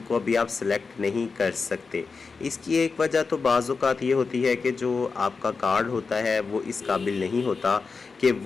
अभी आप सिलेक्ट नहीं कर सकते। इसकी एक वजह तो बाज़ औक़ात ये होती है कि जो आपका कार्ड होता है वो इस काबिल नहीं होता कि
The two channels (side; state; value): right; quieter; 4.7 dB